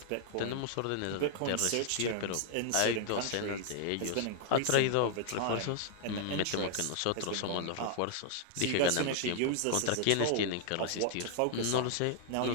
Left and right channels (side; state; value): both; different; correlation 0.00